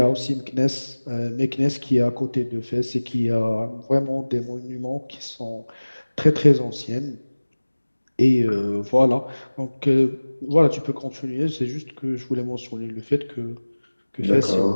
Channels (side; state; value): both; inverted; correlation -1.00